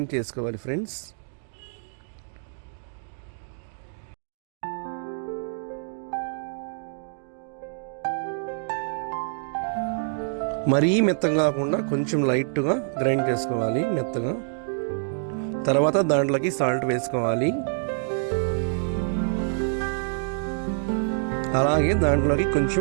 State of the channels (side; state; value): left; silent; digital silence